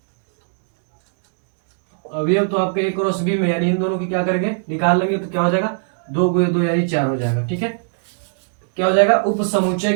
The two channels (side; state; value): left; silent; digital silence